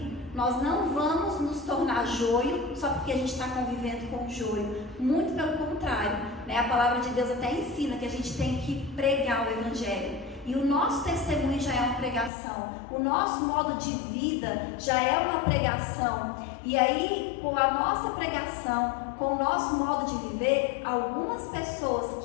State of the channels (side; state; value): right; drops out; at 12.3 s